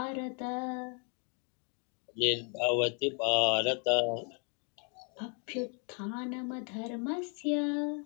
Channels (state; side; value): quieter; right; 38.5 dB